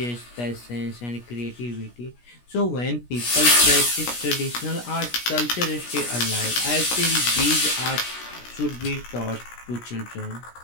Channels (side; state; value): right; late; 17 ms